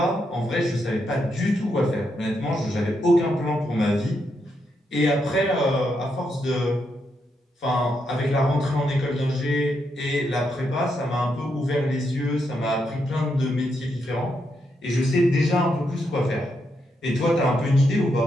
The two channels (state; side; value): normal; both; correlation 0.81